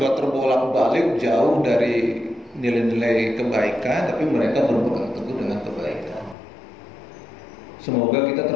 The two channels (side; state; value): right; drops out; at 6.4 s